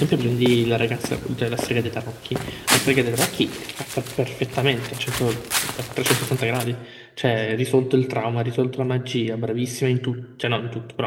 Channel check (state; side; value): identical; both; correlation 1.00